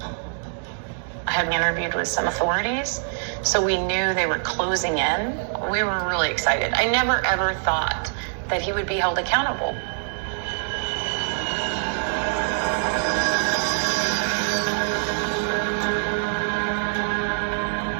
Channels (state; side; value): silent; left; digital silence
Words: I had interviewed with some authorities, so we knew they were closing in. We were really excited. I never ever thought that he would be held accountable.